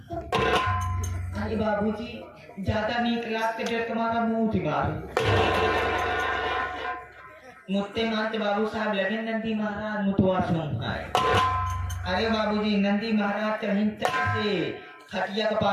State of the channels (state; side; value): identical; both; correlation 1.00